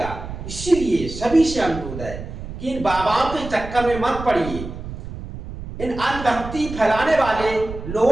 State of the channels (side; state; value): right; noise; rumble, 10 dB below the sound